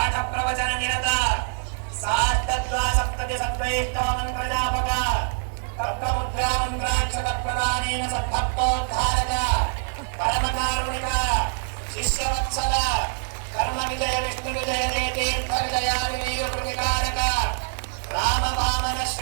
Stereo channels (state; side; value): silent; left; digital silence